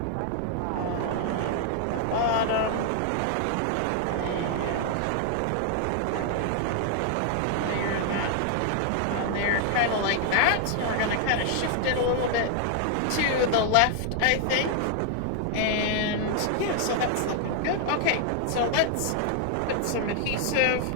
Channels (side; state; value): both; different; correlation 0.00